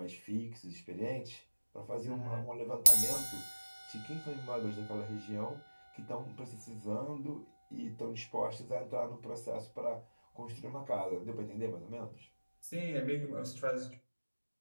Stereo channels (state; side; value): inverted; both; correlation -1.00